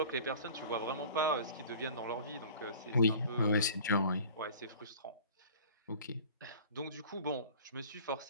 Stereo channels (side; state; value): both; inverted; correlation -0.43